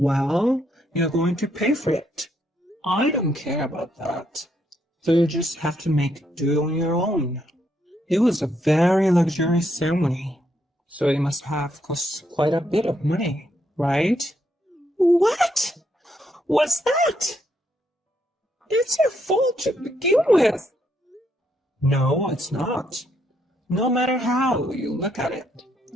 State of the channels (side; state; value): both; normal; correlation 0.75